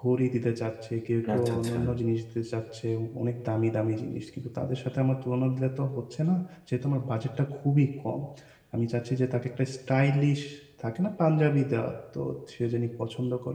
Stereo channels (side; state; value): both; identical; correlation 1.00